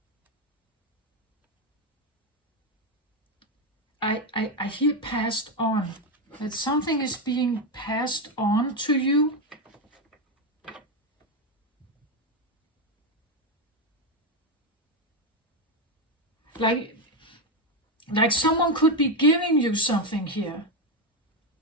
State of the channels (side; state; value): both; normal; correlation 0.08